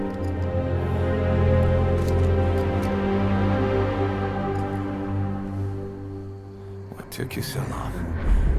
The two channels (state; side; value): identical; both; correlation 1.00